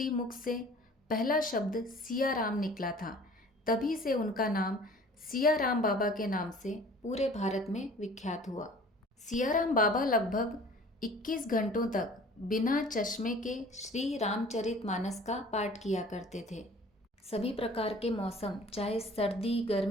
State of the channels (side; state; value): both; normal; correlation 0.47